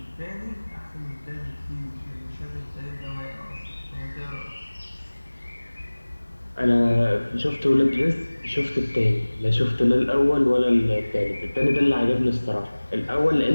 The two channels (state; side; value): inverted; both; correlation -1.00